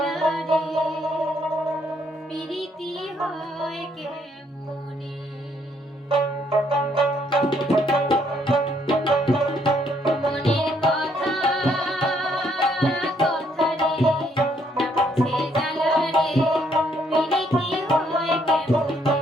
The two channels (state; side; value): normal; both; correlation 0.70